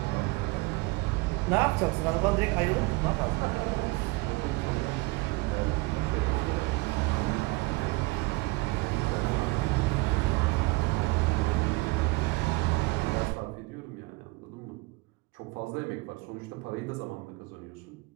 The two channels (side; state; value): left; quieter; 24.4 dB